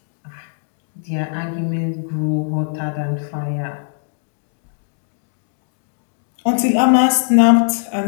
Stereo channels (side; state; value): right; silent; digital silence